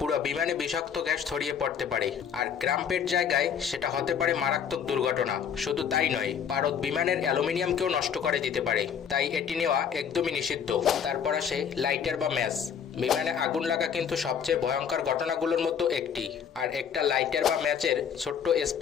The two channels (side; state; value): right; quieter; 7.7 dB